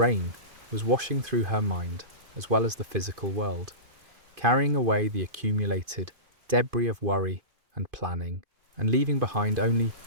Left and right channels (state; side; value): late; left; 2.5 ms